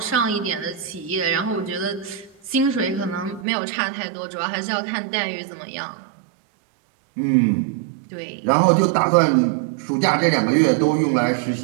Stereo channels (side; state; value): left; drops out; at 3.5 s